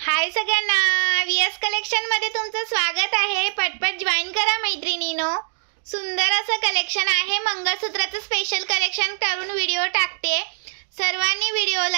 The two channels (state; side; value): silent; left; digital silence